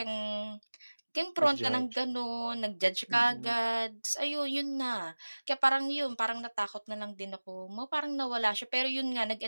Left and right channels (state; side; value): inverted; both; correlation -1.00